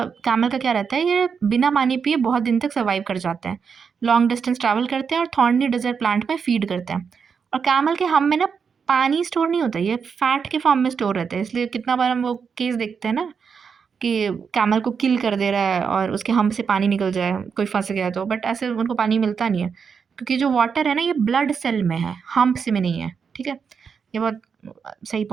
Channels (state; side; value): quieter; left; 6.2 dB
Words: कैमल का क्या रहता है, ये बिना पानी पिए बहुत दिन तक सर्वाइव कर जाते हैं, लॉन्ग डिस्टेंस ट्रैवल करते हैं और थॉर्नी डेजर्ट प्लांट में फीड करते हैं। और कैमल के हम में ना पानी स्टोर नहीं होता, ये फैट के फॉर्म में स्टोर रहता है, इसलिए कितना बार हम वो केस देखते हैं ना कि कैमल को किल कर दे रहा है और उसके हम से पानी निकल जाए, कोई फंस गया तो, बट ऐसे उनको पानी मिलता नहीं है, क्योंकि जो वाटर है ना ये ब्लड सेल में है, हम्प्स में नहीं है। ठीक है, ये बहुत सही